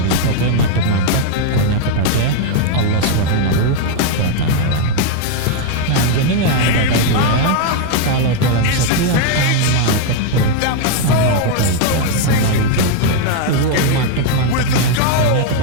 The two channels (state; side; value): different; both; correlation 0.00